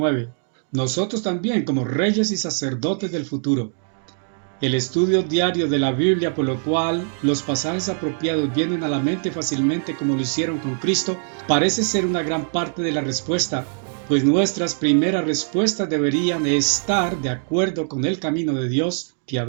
Nosotros también, como reyes y sacerdotes del futuro. El estudio diario de la Biblia, por lo cual los pasajes apropiados vienen a la mente fácilmente como lo hicieron con Cristo, parece ser una gran parte de la respuesta, pues nuestras primeras respuestas deberían estar de acuerdo con el camino de Dios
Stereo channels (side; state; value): left; silent; 64 dB below the other